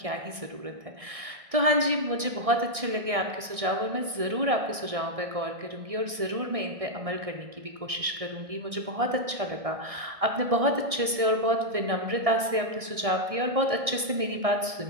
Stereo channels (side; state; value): left; late; 1.6 ms